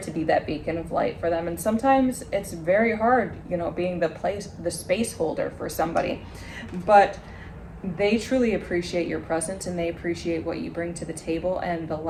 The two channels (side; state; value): both; identical; correlation 1.00